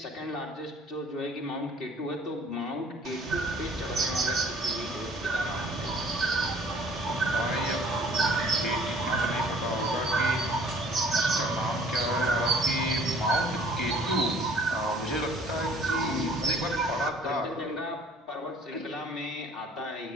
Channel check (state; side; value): normal; both; correlation 0.54